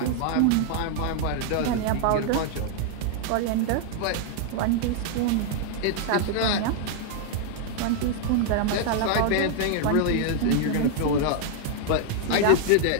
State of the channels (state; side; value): different; both; correlation 0.00